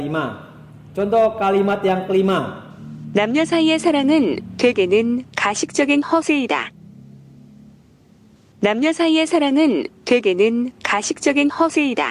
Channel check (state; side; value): identical; both; correlation 1.00